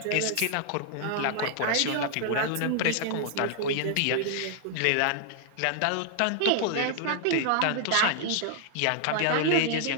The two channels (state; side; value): different; both; correlation 0.00